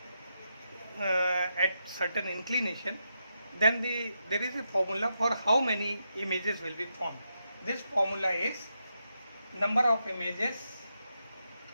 at certain inclination, then there is a formula for how many images will be formed. This formula is number of images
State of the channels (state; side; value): inverted; both; correlation -0.84